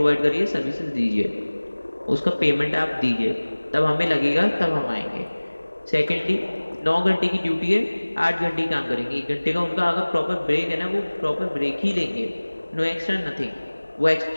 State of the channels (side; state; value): both; inverted; correlation -1.00